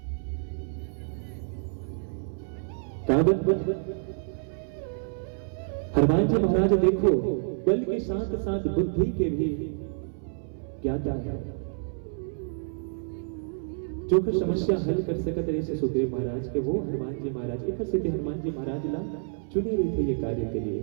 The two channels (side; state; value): left; silent; 59 dB below the other